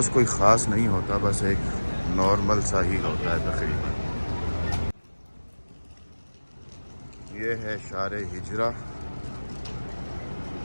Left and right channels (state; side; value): inverted; both; correlation -1.00